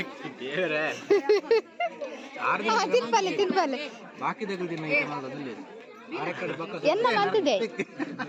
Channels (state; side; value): identical; both; correlation 1.00